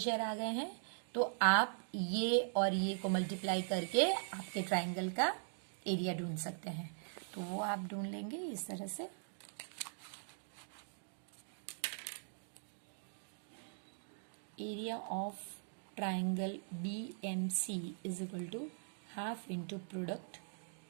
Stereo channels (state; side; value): silent; left; digital silence